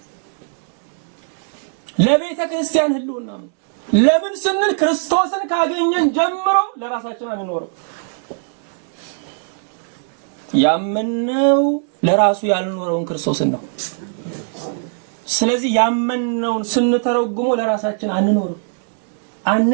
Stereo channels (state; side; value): silent; left; digital silence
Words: ለምን ስንል ክርስቶስን ካገኘን ጀምሮ ለራሳችን አንኖርም። ያመነው ለራሱ ያልኖረውን ክርስቶስን ነው። ስለዚህ ያመነውን ስንተረጉሞ ለራሳችን